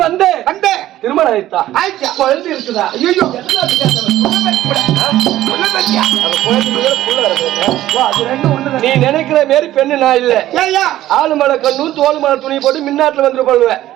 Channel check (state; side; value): quieter; left; 14.1 dB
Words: வந்த திருமணம் ஆயிட்டா? குழந்தை இருக்குதா? நீ நினைக்கிற மாரி பெண்ணு நான் இல்ல. ஆளு மலை கண்ணும் தோல் மலை துணி போட்டு மின்னாட்டுல வந்துட்டு போடுவேன்.